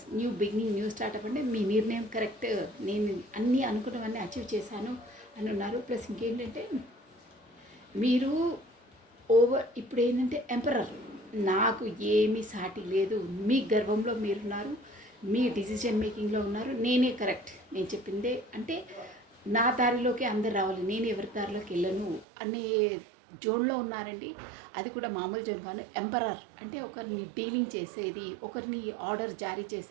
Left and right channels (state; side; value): drops out; left; at 22.2 s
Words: new beginning, new startup అంటే మీ నిర్ణయం కరెక్ట్, నేను అన్నీ అనుకున్నవన్నీ అచీవ్ చేశాను అని ఉన్నారు. ప్లస్ ఇంకేంటంటే మీరు ఇప్పుడు ఏంటంటే ఎంపరర్, నాకు ఏమీ సాటి లేదు, మీ గర్వంలో మీరున్నారు, మీ డిసిజన్ మేకింగ్లో ఉన్నారు, నేనే కరెక్ట్, నేను చెప్పిందే అంటే నా దారిలోకి అందరు రావాలి, నేను ఎవరి దారిలోకి వెళ్ళను అనే జోన్లో ఉన్నారండి. అది కూడా మామూలు జోన్ కాదు. ఎంపరర్ అంటే ఒకరిని డీలింగ్ చేసేది, ఒకరిని ఆర్డర్ జారీ